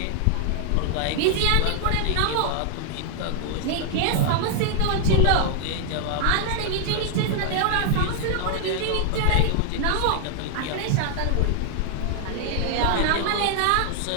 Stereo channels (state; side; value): different; both; correlation 0.00